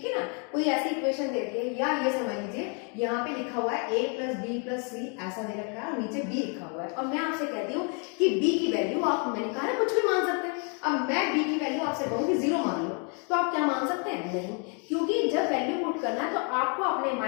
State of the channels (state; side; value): quieter; right; 37.6 dB